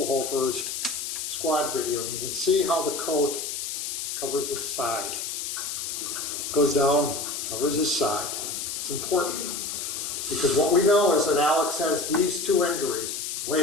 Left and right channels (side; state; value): left; noise; hiss, 4 dB below the sound